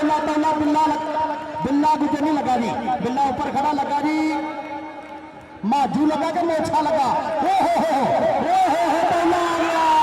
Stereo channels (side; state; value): both; identical; correlation 1.00